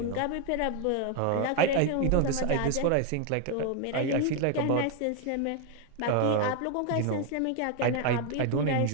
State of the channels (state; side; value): different; both; correlation 0.01